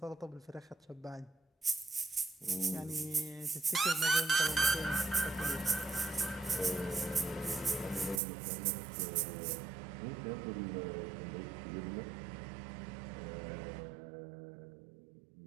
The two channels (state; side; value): drops out; left; at 8.2 s